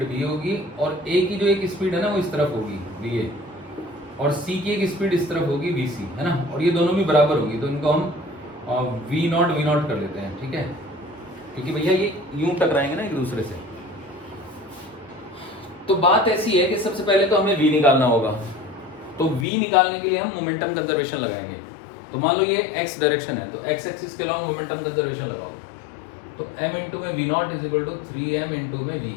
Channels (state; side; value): drops out; right; at 19.5 s